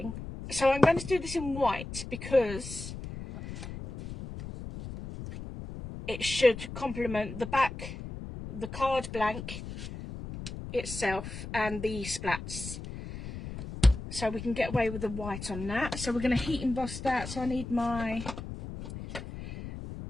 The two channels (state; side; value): noise; left; rumble, 9 dB below the sound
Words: So I'm going to do this in white because it should complement the back, the card blank itself, and the splats. So we can get away with the white on that. So we're going to heat emboss that. So I need my